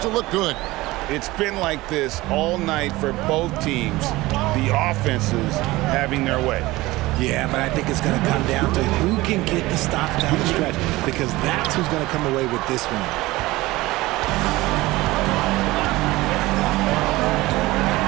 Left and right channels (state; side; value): quieter; left; 19.4 dB